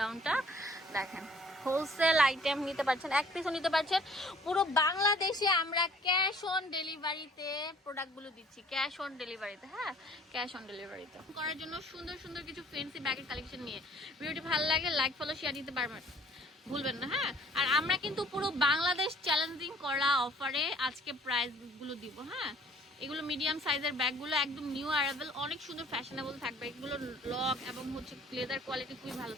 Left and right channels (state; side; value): normal; both; correlation 0.56